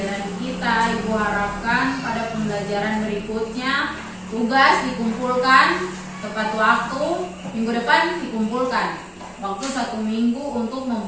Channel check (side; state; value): both; identical; correlation 1.00